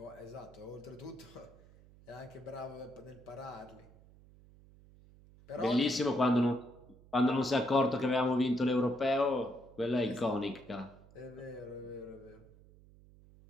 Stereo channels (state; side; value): noise; right; hum, 24 dB below the sound